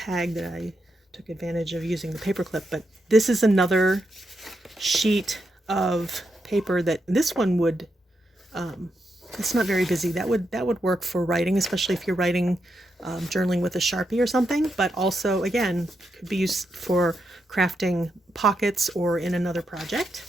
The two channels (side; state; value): both; normal; correlation 0.83